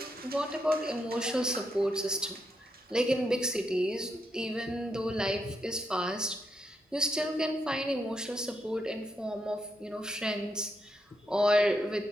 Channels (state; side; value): normal; both; correlation 0.80